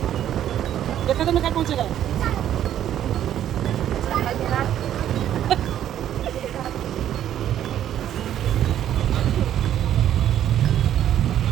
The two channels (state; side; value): quieter; left; 11.0 dB